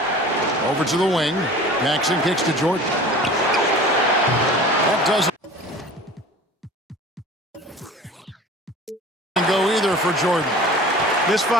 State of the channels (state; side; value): normal; both; correlation 0.41